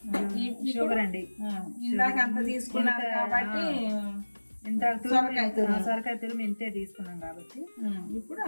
షుగర్ అండి. ఇందాక అంత తీసుకున్నారు కాబట్టి సొరకాయ తురుము ఇంతే తీసుకున్నాం కాబట్టి ఇప్పుడు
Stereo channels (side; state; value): both; inverted; correlation -1.00